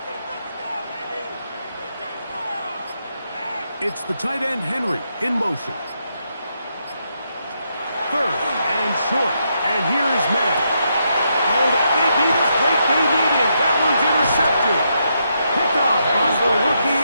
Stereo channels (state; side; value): inverted; both; correlation -0.80